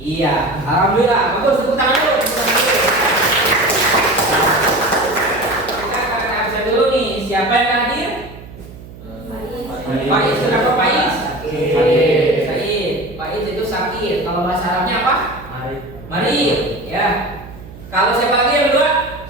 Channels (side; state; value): right; noise; hum, 17 dB below the sound